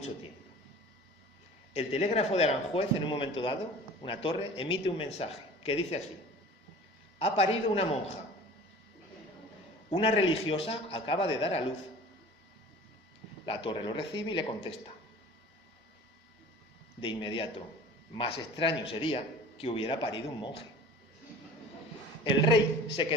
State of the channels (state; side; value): normal; both; correlation 0.42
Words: tiempo. El telégrafo de Aranjuez, en un momento dado, una torre, emite un mensaje que dice así: ha parido una monja. Una religiosa acaba de dar a luz. La torre lo recibe y le contesta. De inmediato, más extraño sería que hubiera parido un monje. El rey se